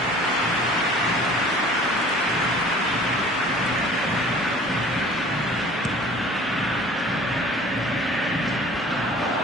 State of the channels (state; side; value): normal; both; correlation 0.48